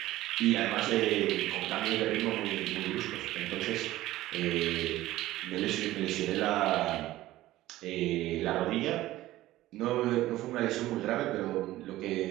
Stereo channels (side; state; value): left; quieter; 15.9 dB